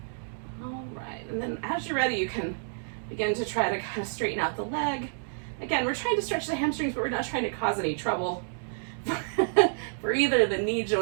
All right, and then as you're ready, you can begin to try to kind of straighten out the leg. Again, we're trying to stretch the hamstrings, but we're not trying to cause any trouble for either the knee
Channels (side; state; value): left; silent; digital silence